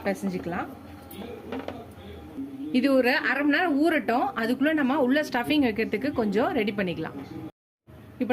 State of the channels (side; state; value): both; identical; correlation 1.00